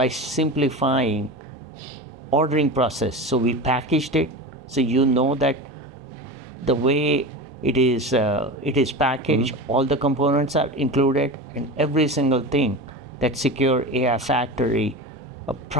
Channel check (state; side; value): normal; both; correlation 0.27